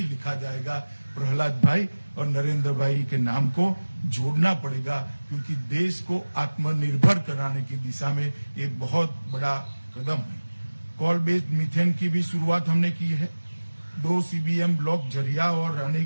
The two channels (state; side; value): inverted; both; correlation -1.00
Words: लिखा जाएगा, प्रहलाद भाई और नरेंद्र भाई के नाम को जोड़ना पड़ेगा, क्योंकि देश को आत्मनिर्भर कराने की दिशा में एक बहुत बड़ा कदम है। कोल बेस्ड मीथेन की भी शुरुआत हमने की है। 2 CBM ब्लॉक झरिया और